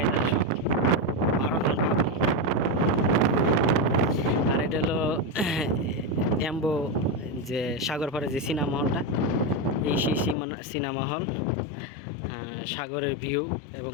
আইতাছে সব 12 জন পাবলিক। আর এটা হলো এম্বো যে সাগরপাড়ে যে সিনেমা হলটা, এই সেই সিনেমা হল। সাগরের ভিউ এবং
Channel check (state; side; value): drops out; right; at 10.4 s